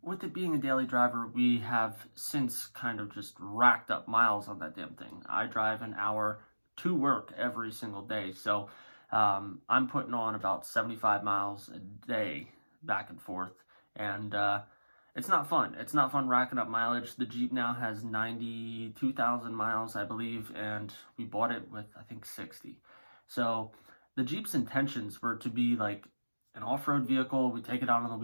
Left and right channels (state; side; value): inverted; both; correlation -1.00